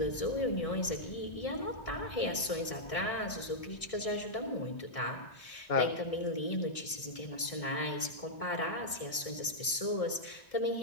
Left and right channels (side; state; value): right; late; 1.6 ms